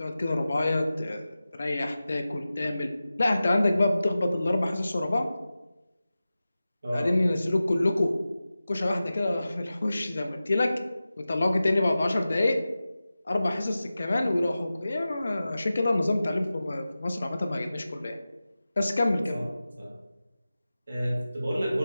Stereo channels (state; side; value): inverted; both; correlation -0.95